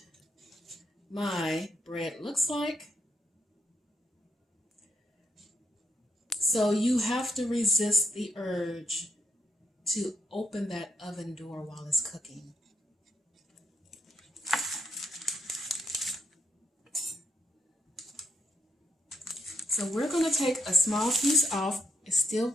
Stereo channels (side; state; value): both; normal; correlation 0.77